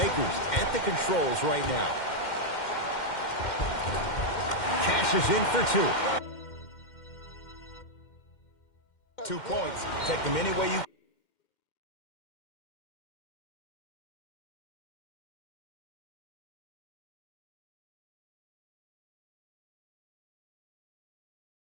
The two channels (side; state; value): right; late; 2.1 ms